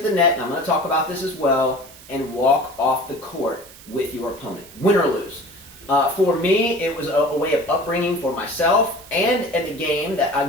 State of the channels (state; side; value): noise; right; hiss, 20 dB below the sound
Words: the net, and I'm going to talk about this as well, and walk off the court with your opponent, win or lose. For me, it was a way of upbringing for myself and at the game that,